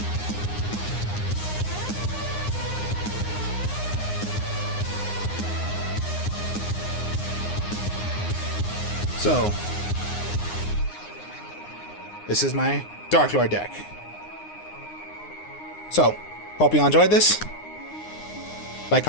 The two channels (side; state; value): right; late; 9.7 ms